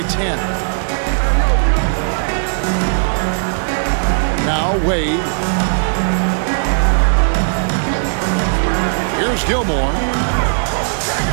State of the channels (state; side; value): silent; left; 69 dB below the other